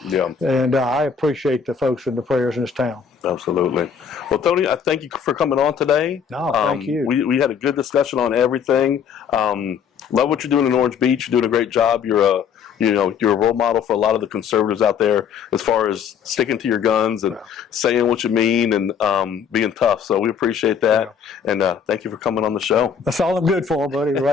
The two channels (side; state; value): right; quieter; 7.2 dB